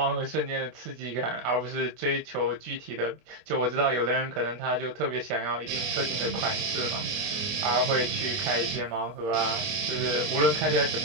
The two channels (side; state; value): left; late; 24 ms